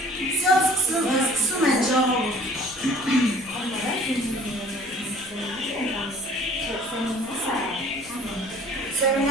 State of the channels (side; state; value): left; noise; rumble, 24 dB below the sound